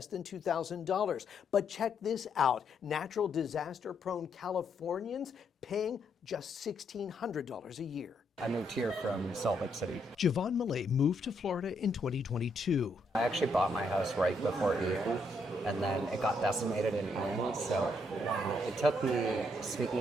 than $2,000. But check this out. Natural disaster-prone Californians paying just $1,600 a year. I moved here from Salt Lake City. Jovan Millet moved to Florida in 2022. I actually bought my house right before Ian, and then it got decimated in Ian, so it took me,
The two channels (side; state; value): both; normal; correlation 0.75